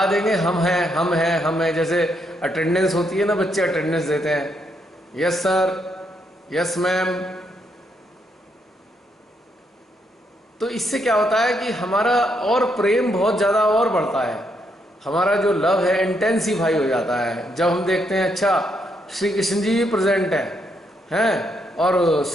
देंगे हम हैं हम हैं हम हैं। जैसे अटेंडेंस होती है ना, बच्चे अटेंडेंस देते हैं, यस सर, यस मैम। तो इससे क्या होता है कि हमारा और प्रेम बहुत ज़्यादा और बढ़ता है, हमारा जो लव है इंटेंसिफाई हो जाता है। जब हम देखते हैं अच्छा श्री कृष्ण जी भी प्रेजेंट हैं और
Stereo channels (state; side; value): normal; both; correlation 0.77